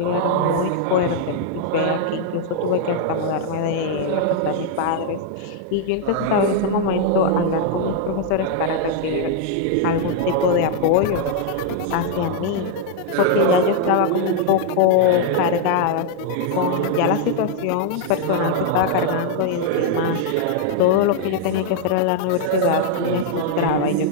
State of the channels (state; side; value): different; both; correlation 0.00